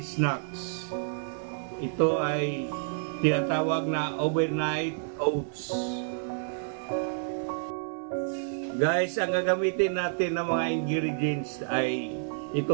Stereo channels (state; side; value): silent; left; 58 dB below the other